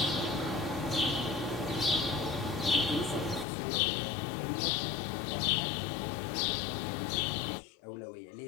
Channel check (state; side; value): drops out; right; at 3.5 s